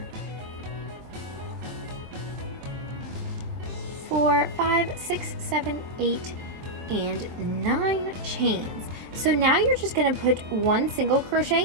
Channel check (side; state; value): left; late; 23 ms